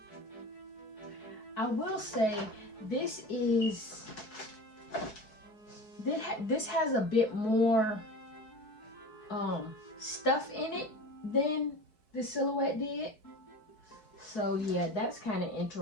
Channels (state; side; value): late; right; 4.6 ms